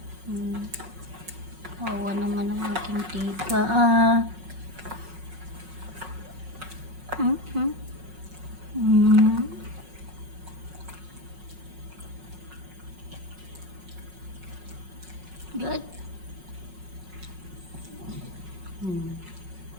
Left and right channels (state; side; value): late; left; 5.4 ms